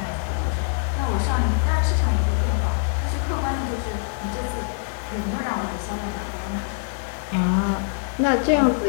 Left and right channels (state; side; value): silent; right; 63 dB below the other